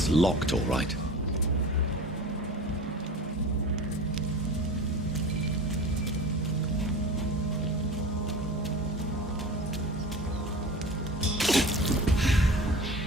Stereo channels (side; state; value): both; normal; correlation 0.34